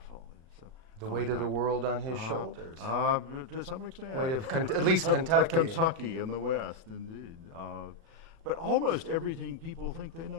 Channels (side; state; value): left; late; 36 ms